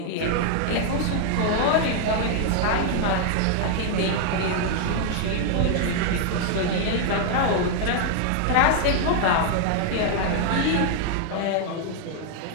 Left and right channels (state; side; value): different; both; correlation 0.00